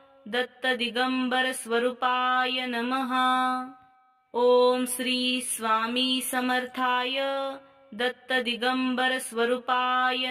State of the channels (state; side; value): identical; both; correlation 1.00